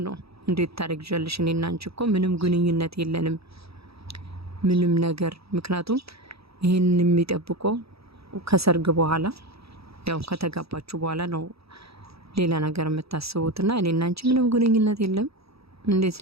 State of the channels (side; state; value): left; late; 0.77 ms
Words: ነው። እንዴት ታረግዣለሽ? እኔና አንቺ እኮ ምንም ግንኙነት የለንም ምንም ነገር። ምክንያቱም ይሄን የሚጠብቀው ከሰርግ በኋላ ያው ከተጋባችሁ በኋላ ነው ሌላ ነገር የምታስቡትና እኔና አንቺ ምንም ግንኙነት የለም እንዴት